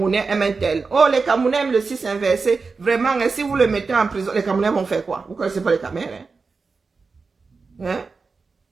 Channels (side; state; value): left; quieter; 4.5 dB